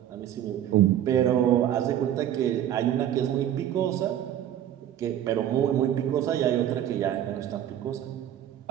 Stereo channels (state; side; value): quieter; left; 11.1 dB